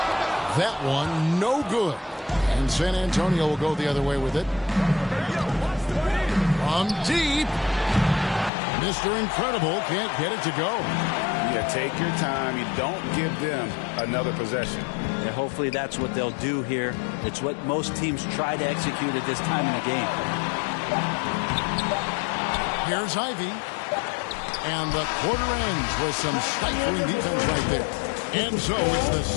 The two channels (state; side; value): drops out; right; at 8.5 s